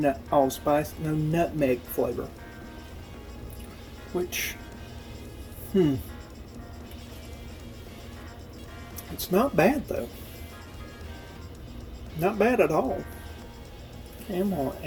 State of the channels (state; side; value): identical; both; correlation 1.00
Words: allspice, no nutmeg flavor. Which, it's not bad though. Not bad at all. Okay, I'm going to